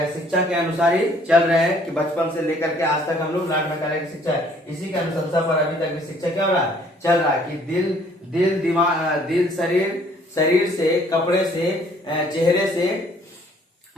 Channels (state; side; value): normal; both; correlation 0.60